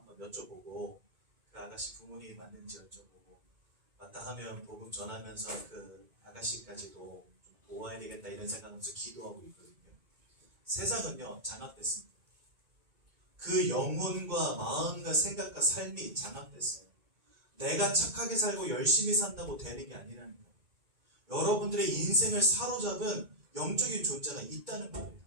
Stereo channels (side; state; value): left; late; 2.2 ms